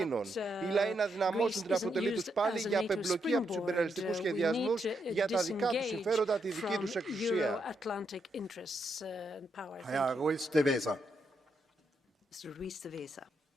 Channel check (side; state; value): both; normal; correlation 0.80